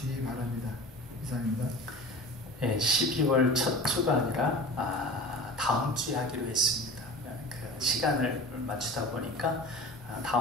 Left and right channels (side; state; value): both; normal; correlation 0.36